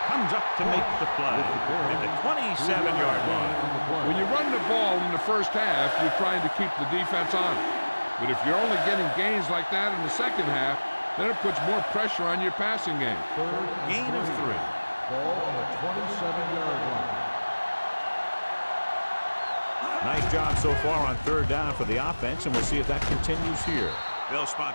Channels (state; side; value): inverted; both; correlation -1.00